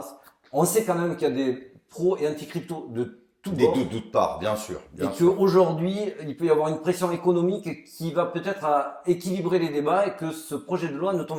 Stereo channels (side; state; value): both; identical; correlation 1.00